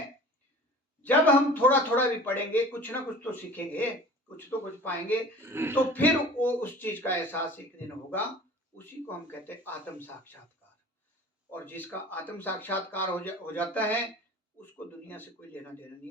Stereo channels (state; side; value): normal; both; correlation 0.42